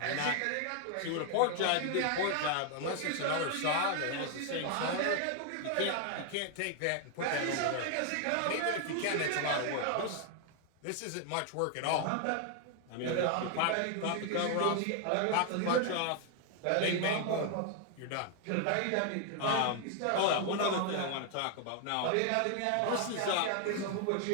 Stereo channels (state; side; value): different; both; correlation 0.00